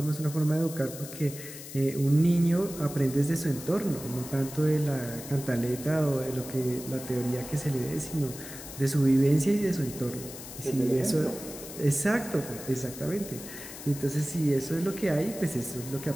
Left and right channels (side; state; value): left; noise; hiss, 12 dB below the sound